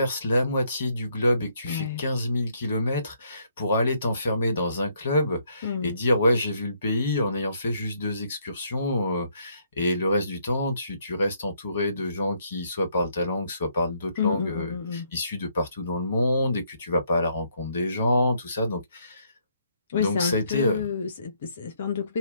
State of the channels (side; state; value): both; inverted; correlation -0.71